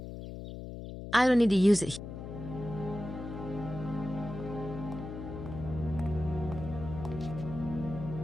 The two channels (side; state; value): left; noise; hum, 9 dB below the sound